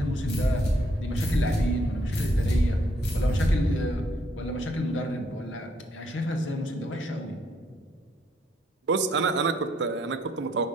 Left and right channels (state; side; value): normal; both; correlation 0.70